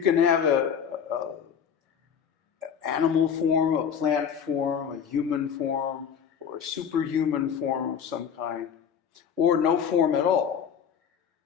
can have a animal form, a plant form, a human form, or a superhuman form of some kind, or no form at all.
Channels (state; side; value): quieter; right; 7.7 dB